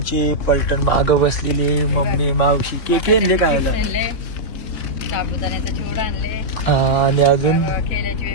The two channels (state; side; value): late; right; 3.6 ms